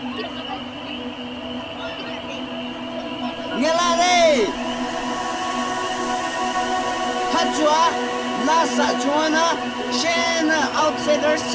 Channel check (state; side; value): identical; both; correlation 1.00